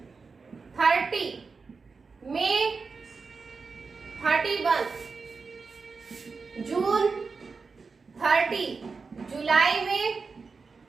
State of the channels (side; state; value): left; quieter; 4.7 dB